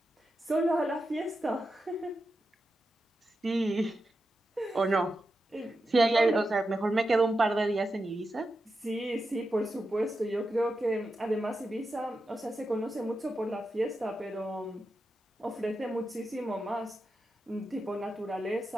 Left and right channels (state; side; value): normal; both; correlation 0.89